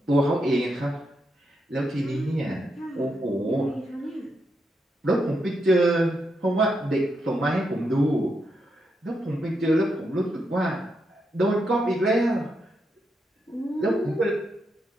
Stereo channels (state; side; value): normal; both; correlation 0.82